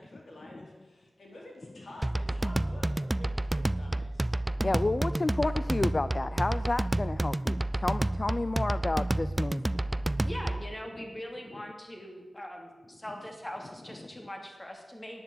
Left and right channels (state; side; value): normal; both; correlation 0.98